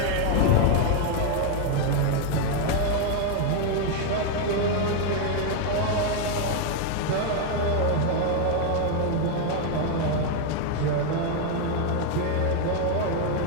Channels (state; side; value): different; both; correlation 0.01